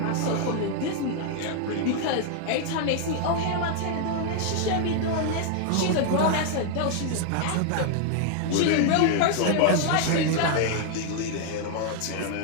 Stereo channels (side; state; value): both; different; correlation 0.00